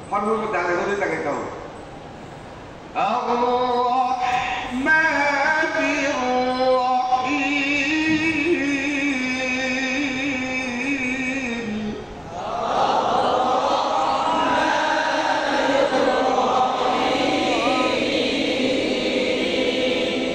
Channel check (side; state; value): both; identical; correlation 1.00